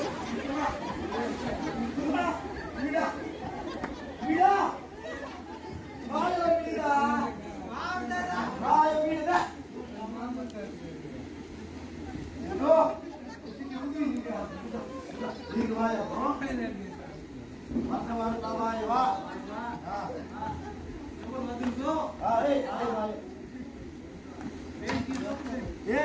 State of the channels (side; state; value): both; identical; correlation 1.00